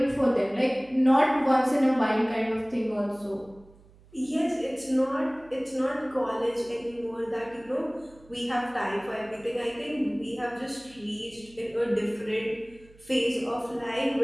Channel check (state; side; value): noise; right; hum, 26 dB below the sound